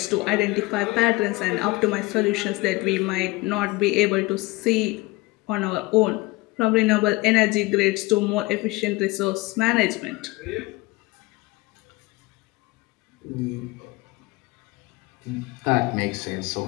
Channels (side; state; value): right; quieter; 22.2 dB